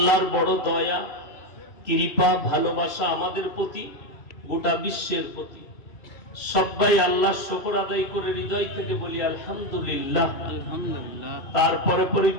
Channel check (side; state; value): right; late; 2.5 ms